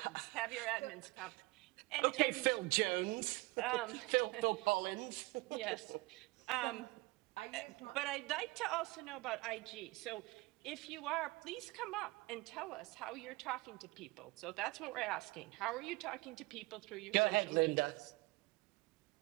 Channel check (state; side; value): quieter; left; 22.9 dB